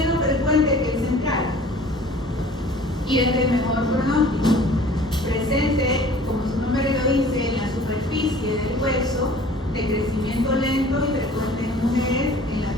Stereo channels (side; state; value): both; normal; correlation 0.48